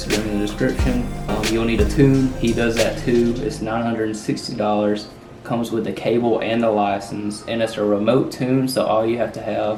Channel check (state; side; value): identical; both; correlation 1.00